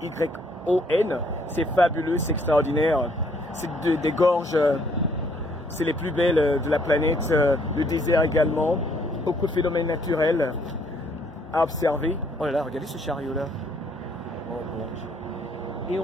C'est fabuleux, c'est extraordinaire. C'est des gorges, c'est les plus belles de la planète. Le désert également. Beaucoup de phénomènes naturels à observer. Oh là là, regardez ce chariot là. Oh bon Dieu. Et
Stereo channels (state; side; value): normal; both; correlation 0.66